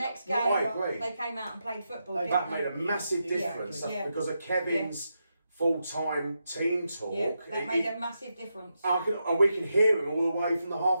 game, I agree. they came out and played football. That made a massive difference because of Kevin's full-time team talk. Yeah, that made a massive difference. And we can hear him all the way from the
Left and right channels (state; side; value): inverted; both; correlation -0.85